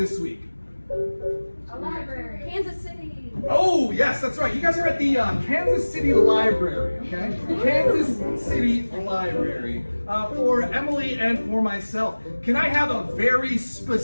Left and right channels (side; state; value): both; inverted; correlation -1.00